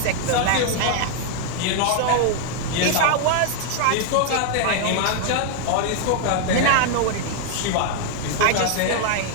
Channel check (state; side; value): different; both; correlation 0.00